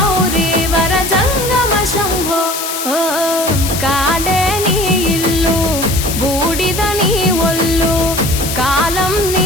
वर जंगम शम्भो ओ काडे नी इल्लु बूडिद नी ఒళ్ళు కాలం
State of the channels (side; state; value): left; noise; hiss, 5 dB below the sound